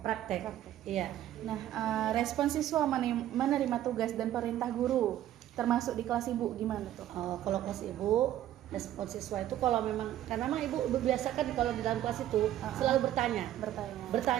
praktek. Iya. Nah, respon siswa menerima tugas dan perintah guru termasuk di kelas ibu gimana tuh? Kalau kelas ibu, respon siswa itu kalau memang karena memang ibu biasakan kalau di dalam kelas itu selalu bertanya.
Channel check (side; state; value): left; quieter; 12.5 dB